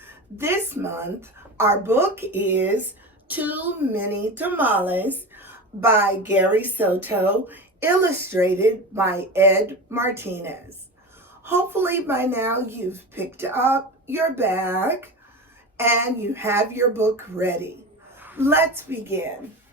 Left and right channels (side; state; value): both; normal; correlation 0.27